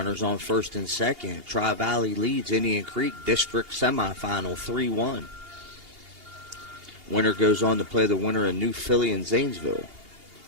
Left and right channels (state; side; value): late; left; 2.8 ms